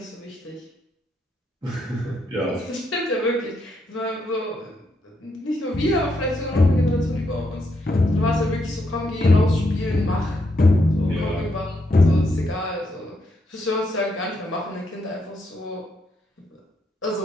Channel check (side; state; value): both; normal; correlation 0.79